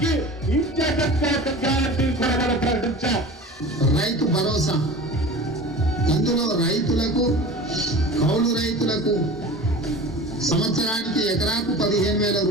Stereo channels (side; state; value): both; normal; correlation 0.37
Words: ఇచ్చేటట్టు ప్రకటించాం. రైతు భరోసా, ఇందులో రైతులకు, కౌలు రైతులకు సంవత్సరానికి ఎకరాకు 15,000